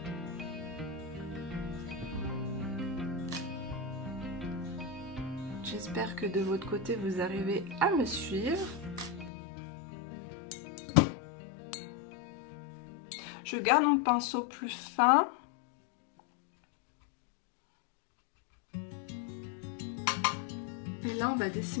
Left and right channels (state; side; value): drops out; right; at 9.3 s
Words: J'espère que de votre côté, vous arrivez à me suivre. Je garde mon pinceau plus fin. Et là, on va